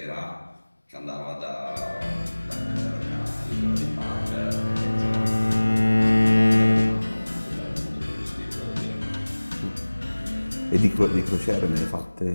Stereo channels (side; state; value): both; inverted; correlation -1.00